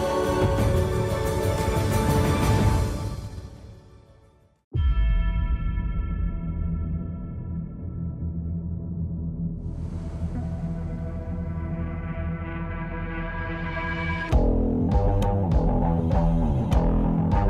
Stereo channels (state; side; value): identical; both; correlation 1.00